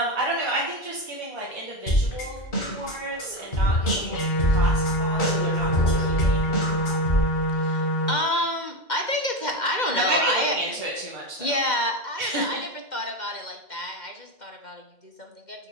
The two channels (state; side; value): late; right; 2.1 ms